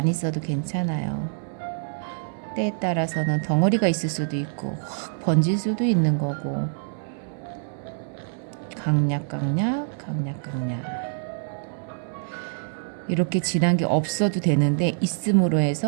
있어도 괜찮아요. 때에 따라서는 덩어리가 있을 수도 있고 확 번질 수도 있는 거고 강약강약 이렇게 진한 게 없어도 되는데 있음으로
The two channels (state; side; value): silent; left; 58 dB below the other